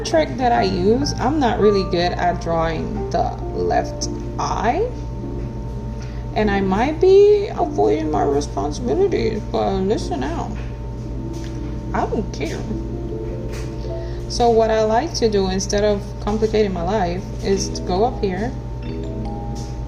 trick that I use, I'm not really good at drawing the left eye, and I might be avoiding my responsibilities, but listen out, I don't care. So what I like to do, instead of complicating my life, is to go up here,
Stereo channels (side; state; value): both; identical; correlation 1.00